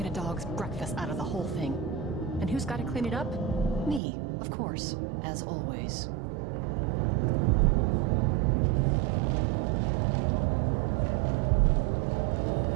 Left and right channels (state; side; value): drops out; left; at 4.0 s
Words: a dog's breakfast out of the whole thing. And who's got to clean it up? Me, of course, as always.